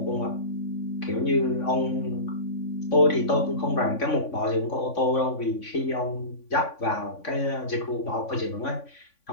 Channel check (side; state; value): right; late; 3.5 ms